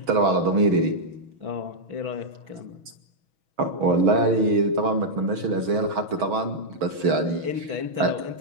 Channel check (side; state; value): left; late; 6.3 ms